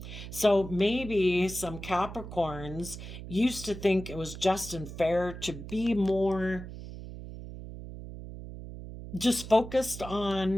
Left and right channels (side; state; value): right; noise; hum, 11 dB below the sound